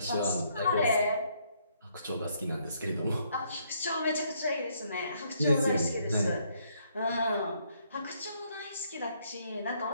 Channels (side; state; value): both; inverted; correlation -0.70